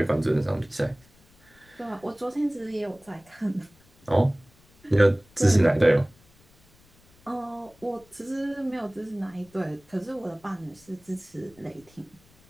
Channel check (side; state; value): left; noise; rumble, 30 dB below the sound